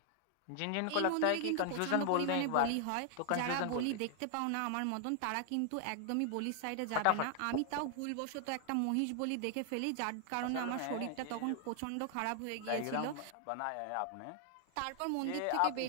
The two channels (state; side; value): different; both; correlation 0.00